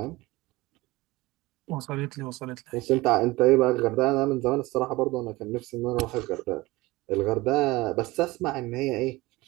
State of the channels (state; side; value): quieter; left; 20.7 dB